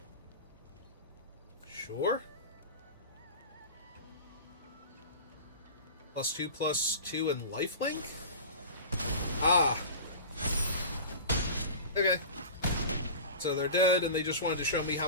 Sure. +2/+2 and lifelink? Ah. Okay. So they're dead, and they just wanted to show me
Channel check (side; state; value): both; inverted; correlation -0.34